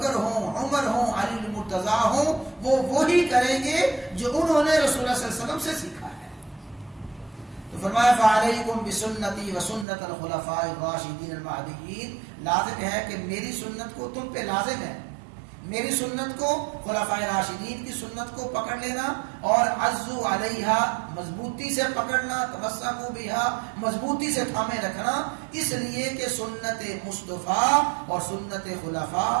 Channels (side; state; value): left; drops out; at 9.9 s